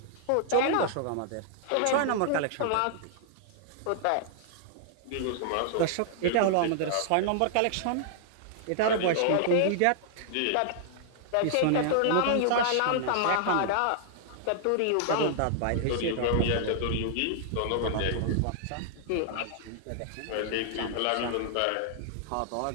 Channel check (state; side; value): different; both; correlation -0.01